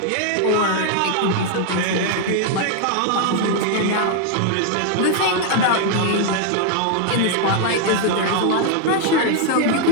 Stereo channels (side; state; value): both; different; correlation 0.00